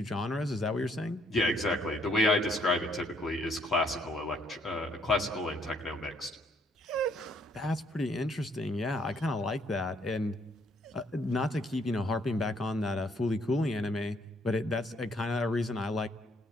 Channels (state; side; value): normal; both; correlation 0.67